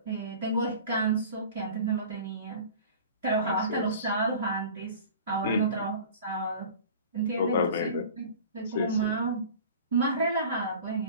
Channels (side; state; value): both; inverted; correlation -0.40